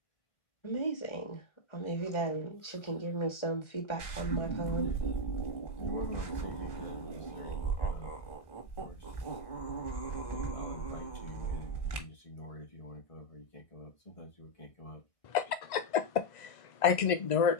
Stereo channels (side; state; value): right; late; 1.5 ms